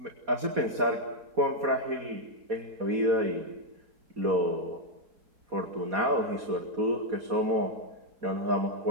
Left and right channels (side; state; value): left; late; 4.2 ms